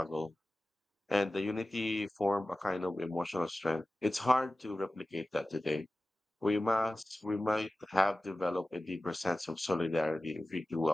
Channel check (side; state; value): both; normal; correlation 0.96